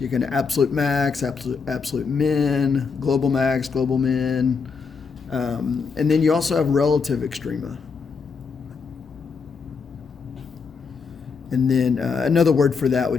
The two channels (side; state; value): right; quieter; 5.4 dB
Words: you can absolute max, absolute min, global max, global min, and then you also have relative extrema. And then another word for that